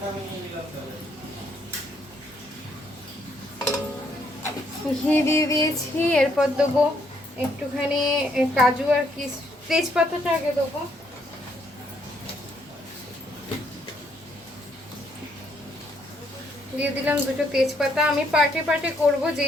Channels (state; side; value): normal; both; correlation 0.71